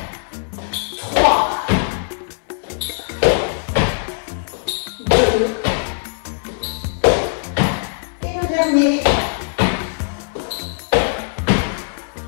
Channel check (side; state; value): right; silent; 65 dB below the other